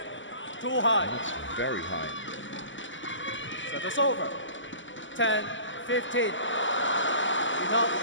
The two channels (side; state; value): right; late; 0.55 ms